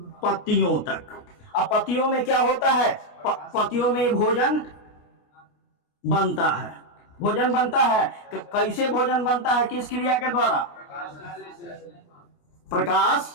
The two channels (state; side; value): late; right; 29 ms